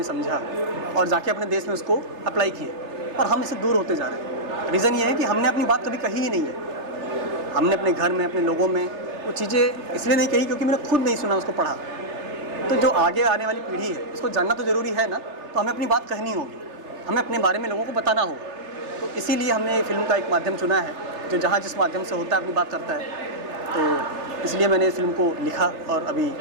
समझा और जाके अपने देश में उसको अप्लाई किए, और हम इससे दूर होते जा रहे हैं। रीज़न ये है कि हमने अपनी बात कभी कही ही नहीं है। हमने अपने घर में, अपने लोगों में वो चीज़ें इसलिए नहीं कही क्योंकि मैंने खुद नहीं सुना, उसको पढ़ा। तो जो आगे आने वाली पीढ़ी है उसको जानना तो ज़रूरी है ना, तो हमें अपनी बात कहनी होगी, हमें अपने बारे में लोगों को बताना होगा। तो इसीलिए हमने ये फिल्म का एक माध्यम चुना है जो जहाँ जिस माध्यम से होता है अपनी बात करता है। तो इसलिए मैंने इस फिल्म को लिखा और अभी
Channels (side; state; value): left; late; 3.3 ms